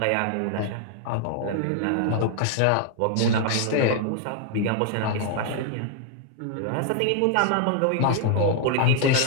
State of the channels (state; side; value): different; both; correlation 0.00